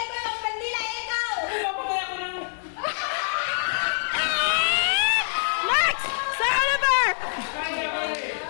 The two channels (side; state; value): right; silent; 61 dB below the other